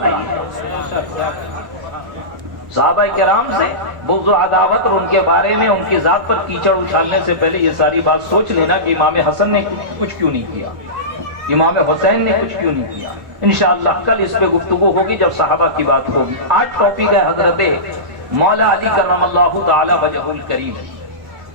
نہیں ہے۔ صحابہ کرام سے بغض و عداوت اور ان کے بارے میں ان کی ذات پر کیچڑ اچھالنے سے پہلے یہ ساری بات سوچ لینا کہ امام حسن نے کچھ کیوں نہیں کیا، امام حسین نے کچھ کیوں نہیں کیا۔ انشاءاللہ کل اس پہ گفتگو ہوگی جب صحابہ کی بات ہوگی۔ آج ٹاپک ہے حضرت مولا علی کرم اللہ تعالی وجہ الکریم۔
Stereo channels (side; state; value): left; late; 1.2 ms